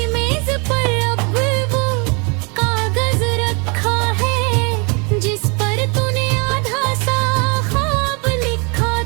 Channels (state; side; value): quieter; left; 32.2 dB